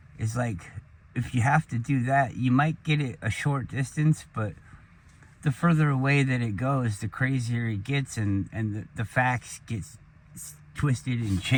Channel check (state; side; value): identical; both; correlation 1.00